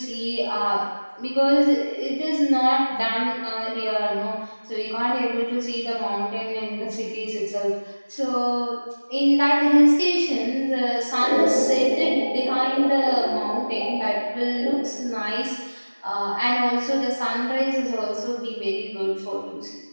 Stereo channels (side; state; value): both; inverted; correlation -1.00